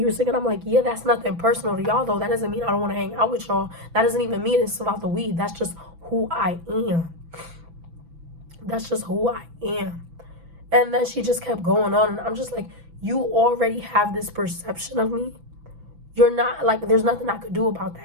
were sick. And I'm like, yeah, that's nothing personal to y'all though. That doesn't mean I don't want to hang out with y'all. That doesn't even mean it's about the weed. That's just who I am. That's just who I am. And then she just kept going on. And I'm just like, you already have this perception of me. You're not, like, there's nothing I could do about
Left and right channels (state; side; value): late; left; 6.0 ms